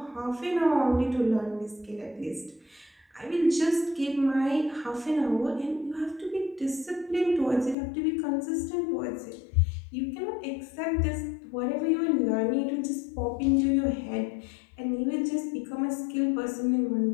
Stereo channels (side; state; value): right; drops out; at 7.8 s